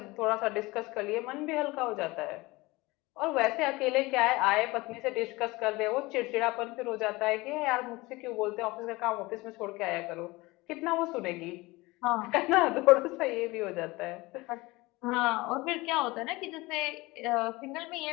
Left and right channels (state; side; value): quieter; right; 21.9 dB